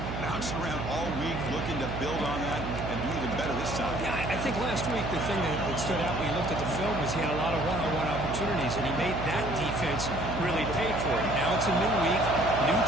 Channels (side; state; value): right; noise; hum, 5 dB below the sound